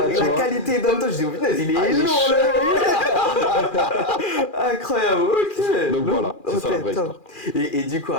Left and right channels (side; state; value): right; late; 2.4 ms